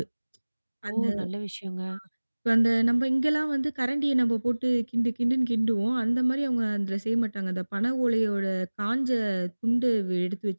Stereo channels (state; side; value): inverted; both; correlation -1.00